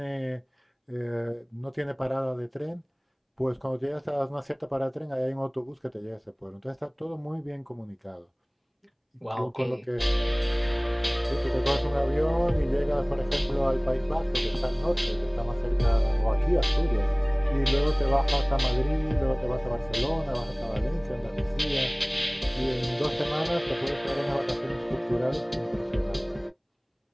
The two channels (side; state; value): both; identical; correlation 1.00